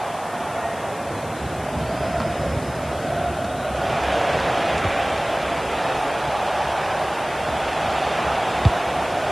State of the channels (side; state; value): left; noise; hiss, 18 dB below the sound